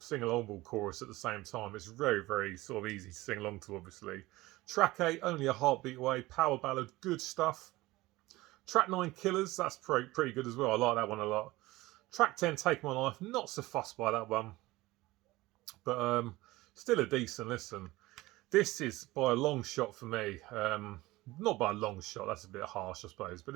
chorus at the same time. It's very, very sort of easy to sing along to, obviously. Track 8, Only a Heartbeat Away, power ballad, good stuff. Track 9, Killers, that's pretty good as well. I like that one a lot. Track 10, Take My Life, not so fussed by that one, but still a decent listen. This is by a long shot for me. Not by a long shot, that's a bit harsh, I suppose, but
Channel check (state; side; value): quieter; left; 19.2 dB